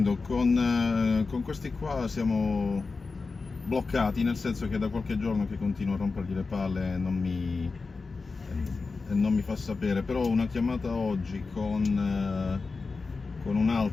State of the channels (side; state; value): right; quieter; 4.2 dB